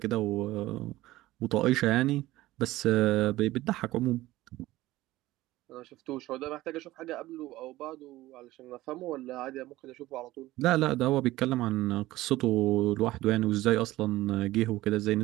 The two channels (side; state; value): left; quieter; 17.1 dB